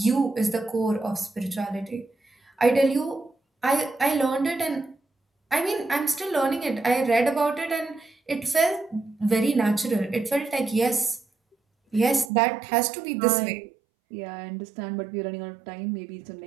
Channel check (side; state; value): left; drops out; at 12.3 s